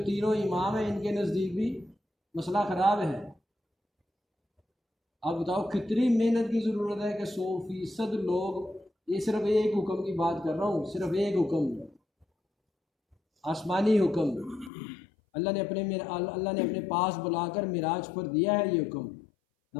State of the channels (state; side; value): drops out; right; at 14.7 s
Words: تینوں امام ہیں ان کے نزدیک بھی مسئلہ خراب ہے۔ اب بتاؤ کتنی محنت کی ضرورت ہے کہ 100% لوگ، یہ صرف ایک حکم کی بات کر رہا ہوں، صرف ایک حکم، آسمانی حکم، اللہ نے اپنے پاس بلا کر معراج پر دیا ہے یہ حکم،